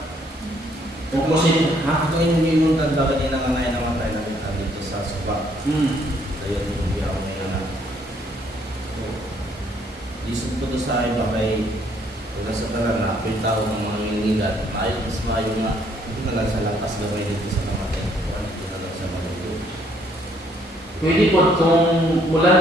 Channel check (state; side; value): normal; both; correlation 0.66